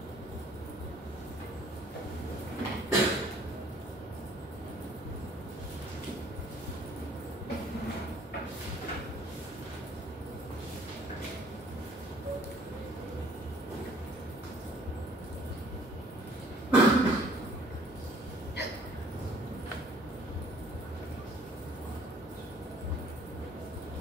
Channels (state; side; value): normal; both; correlation 0.57